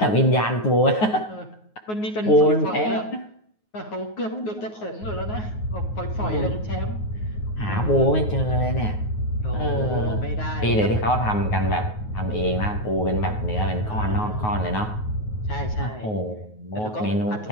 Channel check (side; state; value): right; late; 9.4 ms